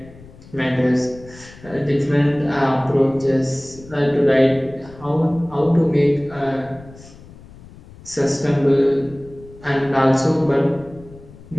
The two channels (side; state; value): left; noise; rumble, 21 dB below the sound